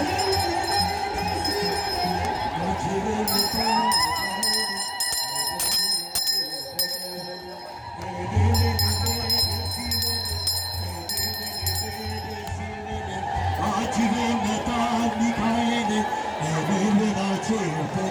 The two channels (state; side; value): identical; both; correlation 1.00